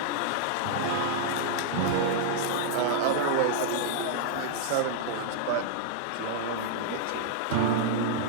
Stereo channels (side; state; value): both; different; correlation -0.01